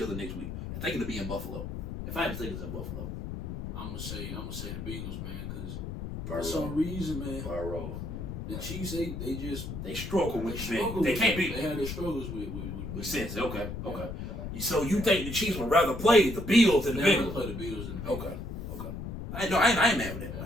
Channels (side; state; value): left; noise; rumble, 7 dB below the sound